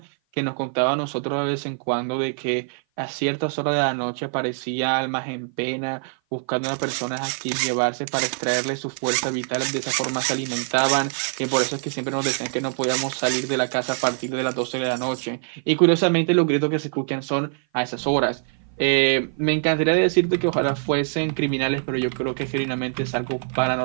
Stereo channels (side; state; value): left; silent; 56 dB below the other